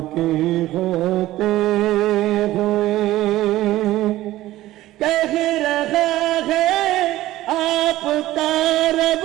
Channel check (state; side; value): quieter; left; 15.8 dB